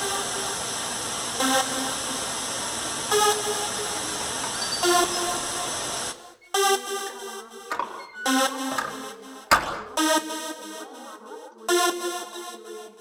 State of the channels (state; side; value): identical; both; correlation 1.00